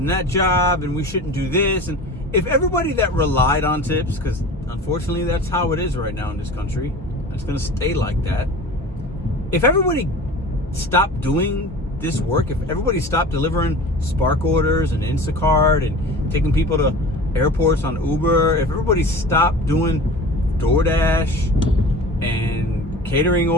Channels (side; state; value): both; normal; correlation 0.37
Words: that job, and we shouldn't do this. And if everybody that relied on tips, because unfortunately that's how it is right now in this country, and it's going to stay like that. If everybody stopped doing this work, if everybody stopped delivering Spark orders and Instacart and taking people to airports on Uber, if everybody stopped doing DoorDash and catering